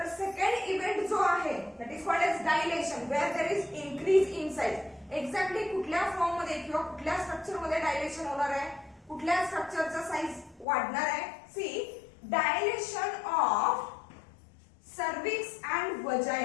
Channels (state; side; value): drops out; right; at 10.7 s